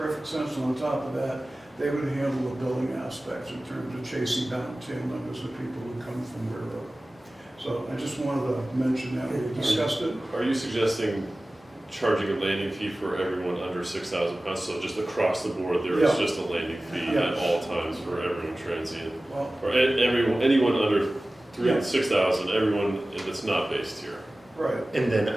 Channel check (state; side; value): normal; both; correlation 0.97